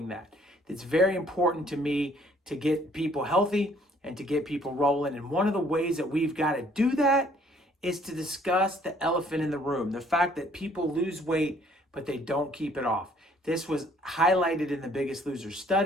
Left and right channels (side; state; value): both; normal; correlation 0.61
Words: that. It's very important to me to get people healthy and to get people rolling, and one of the ways that we've got to do that is to discuss the elephant in the room, the fact that people lose weight but they don't keep it off. This was highlighted in the Biggest Loser